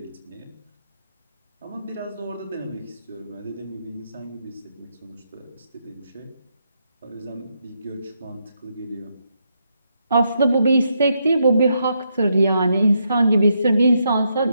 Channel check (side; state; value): both; inverted; correlation -0.80